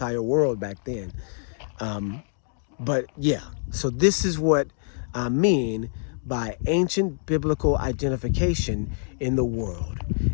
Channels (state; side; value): silent; right; digital silence